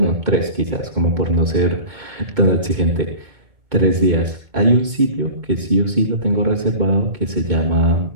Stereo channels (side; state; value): left; late; 2.2 ms